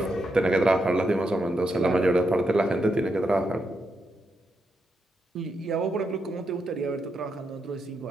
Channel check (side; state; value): both; normal; correlation 0.83